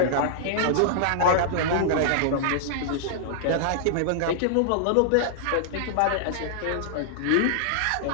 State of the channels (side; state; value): both; different; correlation -0.01